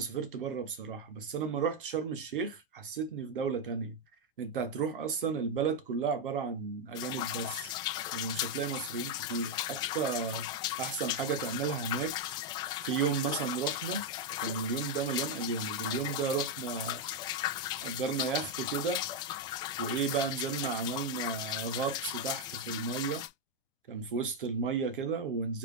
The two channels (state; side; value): normal; both; correlation 0.03